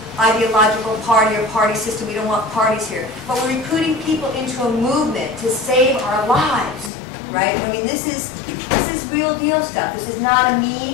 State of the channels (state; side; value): drops out; right; at 6.9 s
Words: ideological party or party system. We don't want parties here. But we're recruiting people into a movement to save our lives, right? I mean, this is real deal stuff. This is not a